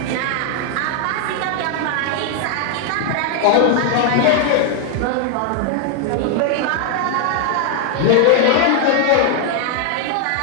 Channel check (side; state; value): both; different; correlation 0.00